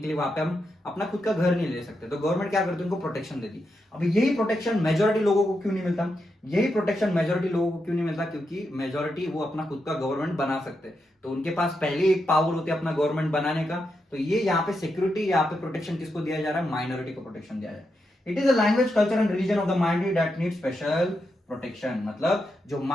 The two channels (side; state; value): both; normal; correlation 0.85